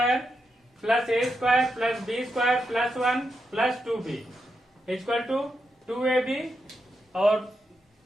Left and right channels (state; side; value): normal; both; correlation 0.85